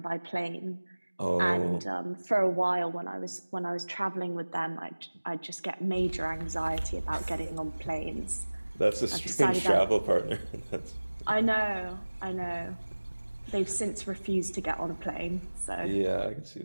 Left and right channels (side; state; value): both; inverted; correlation -1.00